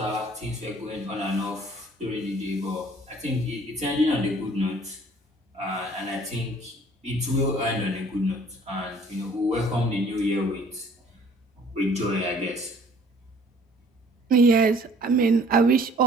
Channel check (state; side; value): normal; both; correlation 0.55